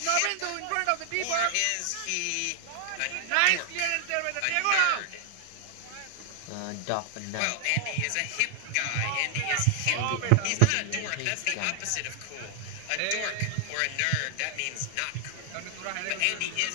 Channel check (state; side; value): different; both; correlation 0.00